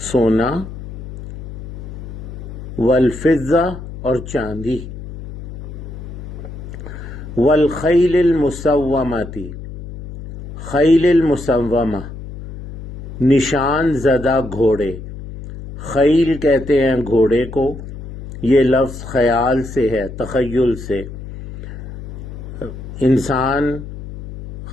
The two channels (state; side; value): noise; left; hum, 12 dB below the sound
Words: سونا، والفضہ اور چاندی، والخیل المسومۃ، خیل المسومہ نشان زدہ گھوڑے۔ خیل کہتے ہیں گھوڑے کو، یہ لفظ خیال سے ہے، تخیل سے۔ انسان